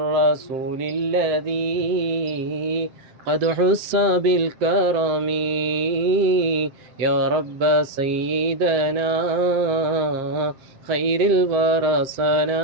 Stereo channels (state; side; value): late; left; 7.5 ms